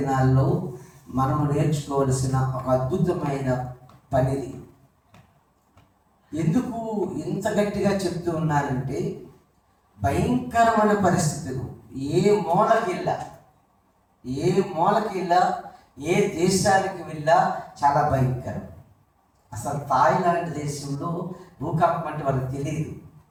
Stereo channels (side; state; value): both; identical; correlation 1.00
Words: మనము నేర్చుకోవలసిన ఒక అద్భుతమైన పనిది. ఎందుకు ఇంత గట్టిగా చెప్తూ ఉన్నానంటే, భయంకరమైన పరిస్థితులు ఏ మూలకి వెళ్ళా ఏ దేశానికి వెళ్ళా చాలా భయంకరం. అసలు థాయిలాండ్ దేశంలో భూకంపం అంటే వాళ్ళకి తెలియదు.